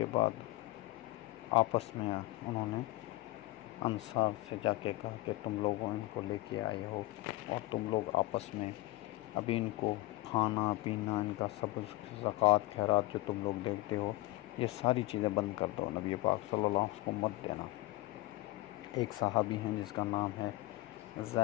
بعد آپس میں انہوں نے انصار سے جا کے کہا کہ تم لوگوں ان کو لے کے آئے ہو اور تم لوگ آپس میں ابھی ان کو کھانا پینا ان کا سب زکوٰۃ خیرات جو تم لوگ دیتے ہو یہ ساری چیزیں بند کر دو. نبی پاک صلی اللہ علیہ وسلم کو مت دینا. ایک صحابی ہیں جس کا نام ہے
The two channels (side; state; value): right; quieter; 19.0 dB